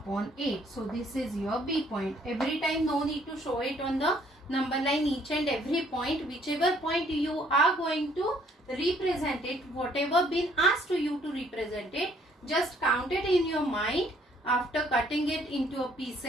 8. So this is your B point. Every time no need to show it on the number line, each and every point, whichever point you are going to represent it, whatever been asked to you to represent it, just count it in your mind after cutting it into a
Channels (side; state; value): both; normal; correlation 0.63